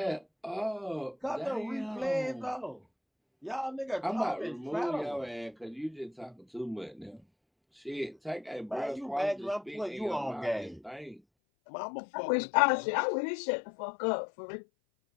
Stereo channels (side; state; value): right; drops out; at 11.2 s